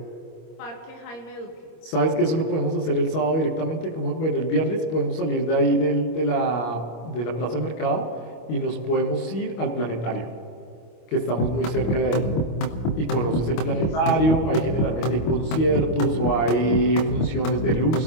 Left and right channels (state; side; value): late; right; 25 ms